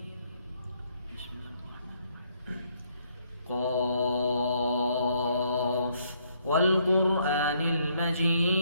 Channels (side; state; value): both; inverted; correlation -0.70